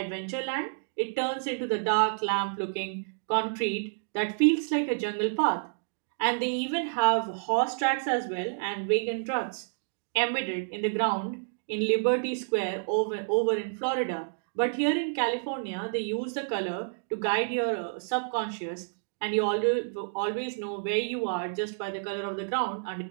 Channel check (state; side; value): silent; left; digital silence